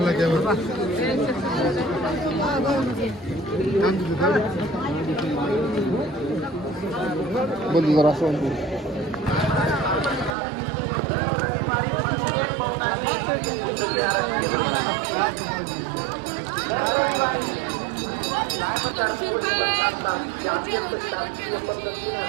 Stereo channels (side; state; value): left; drops out; at 10.4 s